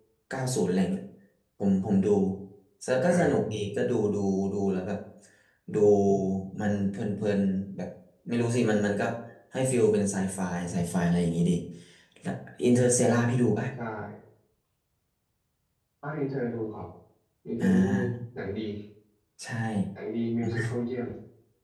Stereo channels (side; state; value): both; identical; correlation 1.00